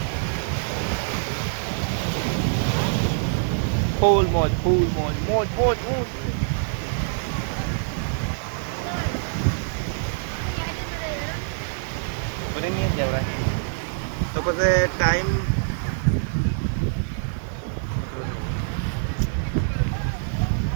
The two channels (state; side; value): silent; left; digital silence